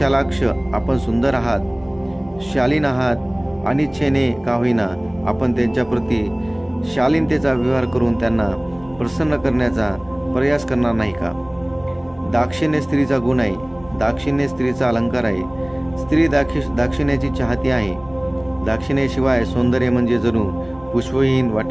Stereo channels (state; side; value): noise; left; hum, 25 dB below the sound